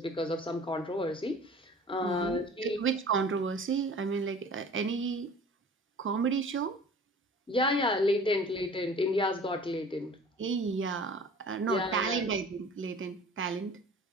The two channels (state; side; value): normal; both; correlation 0.45